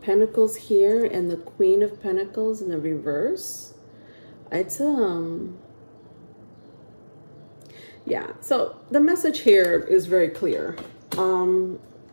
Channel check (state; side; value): inverted; both; correlation -1.00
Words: Pentacles here and the Queen of Pentacles in the reverse, it's yeah. So the message here is very clear.